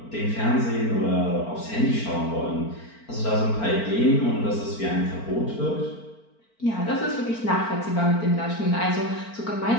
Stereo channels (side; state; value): right; late; 4.4 ms